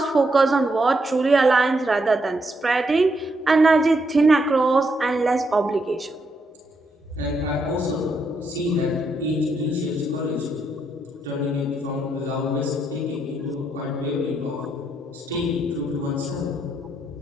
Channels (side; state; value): both; normal; correlation 0.78